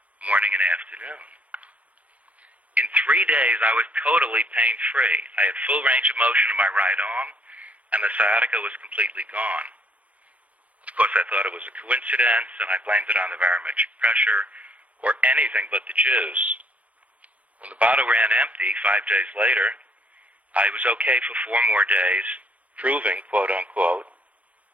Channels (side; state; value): left; late; 0.067 ms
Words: morning and afternoon. In 3 days, I was totally pain-free. I had full range of motion in my right arm, and the sciatica was completely gone. Of course, I thought it was a coincidence, and I blamed it on the barometric pressure, or anything but the juice. When the bottle ran empty 5 days later, I was okay for 4 more days, proving, quote-unquote,